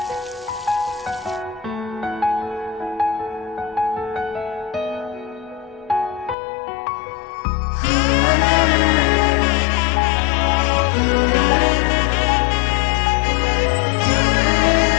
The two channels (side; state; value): right; drops out; at 6.4 s